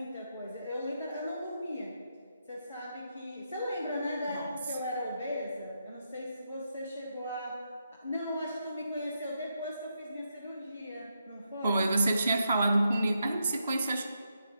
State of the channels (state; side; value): inverted; both; correlation -0.82